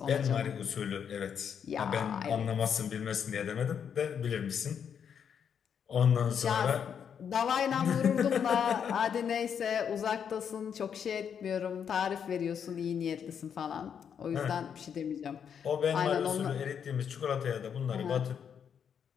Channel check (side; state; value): right; quieter; 7.7 dB